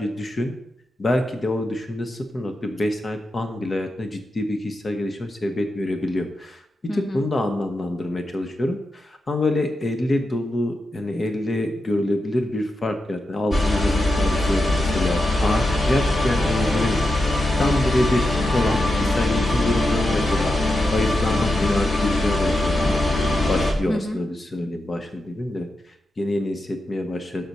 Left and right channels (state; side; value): normal; both; correlation 0.88